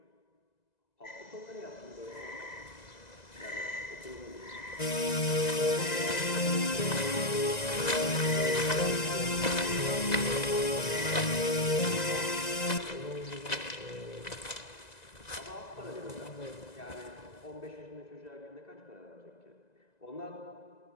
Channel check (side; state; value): right; late; 2.0 ms